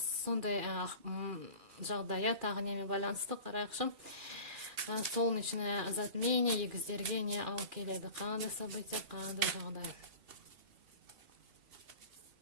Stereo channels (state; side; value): late; left; 2.4 ms